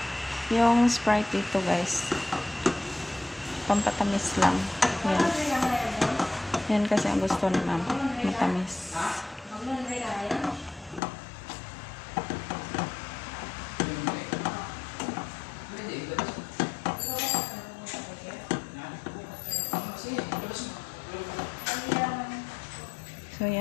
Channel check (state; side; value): drops out; right; at 11.0 s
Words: Yung Sprite dito guys, pampatamis lang. Yan. Yan kasi ang gusto ni ma'am, matamis. So